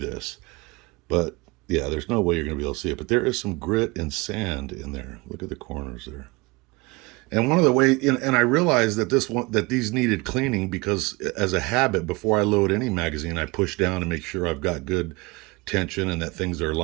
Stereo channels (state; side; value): quieter; left; 25.0 dB